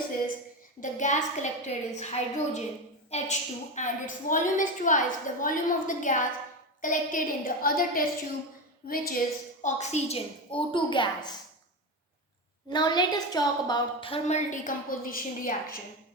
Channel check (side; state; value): both; normal; correlation 0.17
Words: the gas collected is hydrogen, H2, and its volume is twice the volume of the gas collected in the other test tube, which is oxygen, O2 gas. Now let us talk about thermal decomposition reaction,